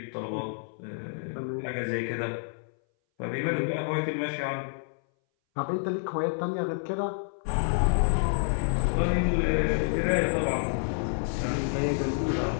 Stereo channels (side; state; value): right; silent; 59 dB below the other